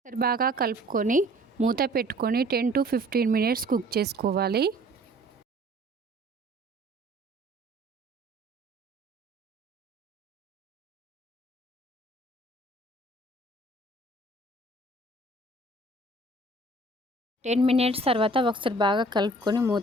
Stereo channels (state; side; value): normal; both; correlation 0.53